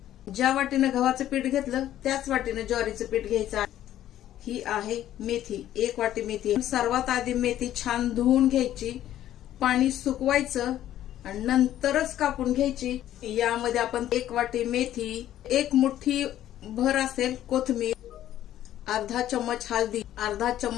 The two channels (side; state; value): right; quieter; 12.4 dB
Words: ज्या वाटीने गव्हाचं पीठ घेतलं त्याच वाटीने ज्वारीचं पीठ घ्यायचं आहे। ही आहे मेथी, 1 वाटी मेथी। सर्वात आधी मेथी छान धुवून घ्यायची, पाणी सुकवायचं आणि नंतरच कापून घ्यायची। यामध्ये आपण 1 वाटी मेथी, 1 मुठ्ठी भर असेल कोथिंबीर, अर्धा चम्मच हळदी, अर्धा